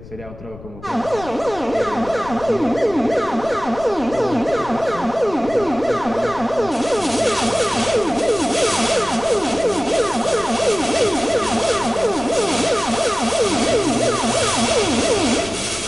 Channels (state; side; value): noise; left; rumble, 17 dB below the sound